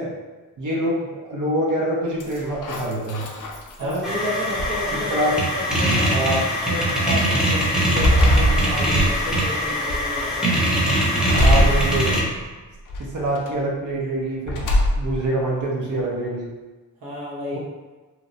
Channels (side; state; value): both; normal; correlation 0.44